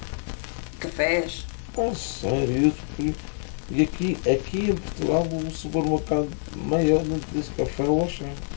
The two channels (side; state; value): right; silent; digital silence